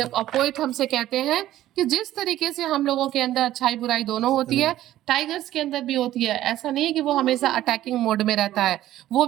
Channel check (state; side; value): quieter; left; 13.7 dB